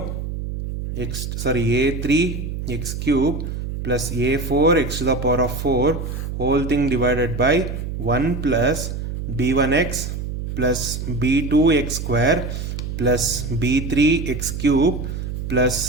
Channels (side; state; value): right; noise; hum, 5 dB below the sound